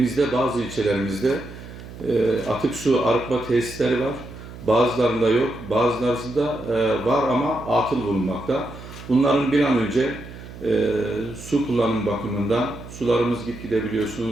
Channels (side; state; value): right; noise; hum, 14 dB below the sound